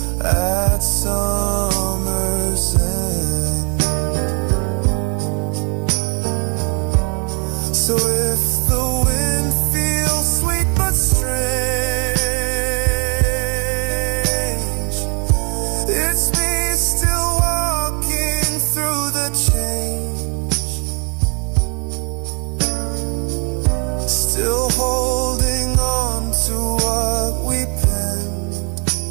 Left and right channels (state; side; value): quieter; left; 35.5 dB